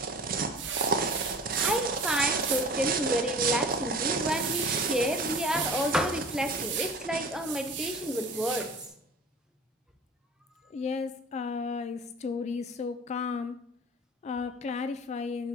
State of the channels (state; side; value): normal; both; correlation 0.41